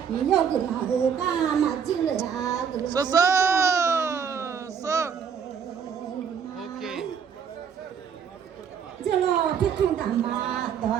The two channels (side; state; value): left; quieter; 7.2 dB